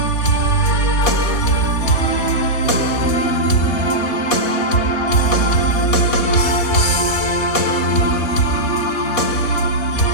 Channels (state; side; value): late; right; 4.2 ms